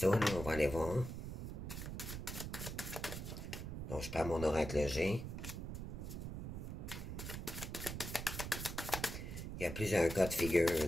là, on va aller voir. Donc, je prends mon oracle G. Il y a plusieurs cas de figure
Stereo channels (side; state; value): right; noise; rumble, 6 dB below the sound